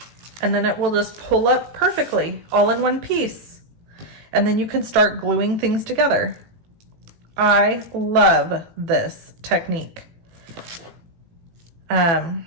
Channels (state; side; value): late; left; 18 ms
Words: and then it will just pull up perfectly all in one piece. And then you can start gluing things together. I love this technique.